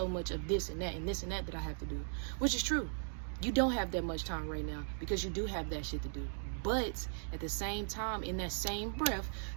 much of this and that and this and that I have to do, which is true. You don't have that much time right now because you do have that shit to do. But at the same time, in that same breath,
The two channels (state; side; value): silent; left; digital silence